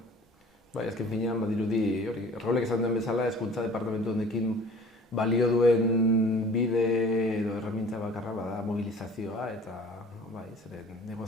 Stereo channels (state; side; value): normal; both; correlation 0.47